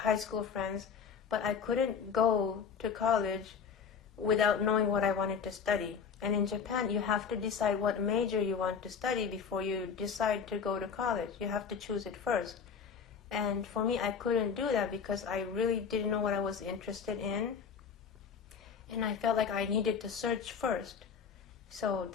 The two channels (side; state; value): right; quieter; 6.4 dB